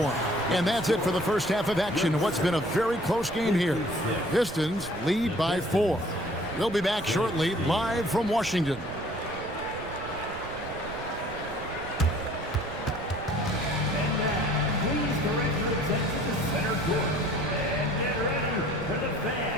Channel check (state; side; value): noise; right; rumble, 14 dB below the sound